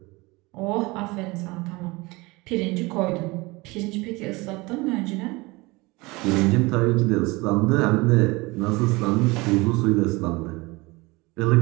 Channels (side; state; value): left; quieter; 23.7 dB